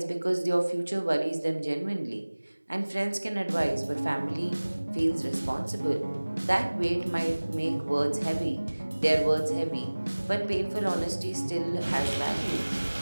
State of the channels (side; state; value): both; inverted; correlation -1.00